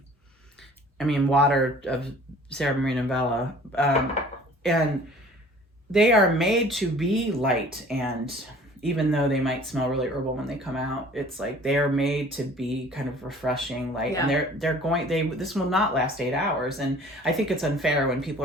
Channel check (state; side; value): normal; both; correlation 0.49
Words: mean, Water of Sarah Maria Novella. And they are made to be light, and even though they might smell really herbal when they come out, it's like they are made to be kind of refreshing, light. Yeah. And this will not last 8 hours. And I think it's unfair when people